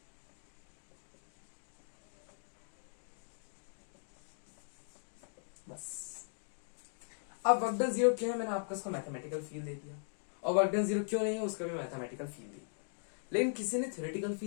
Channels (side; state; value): right; silent; digital silence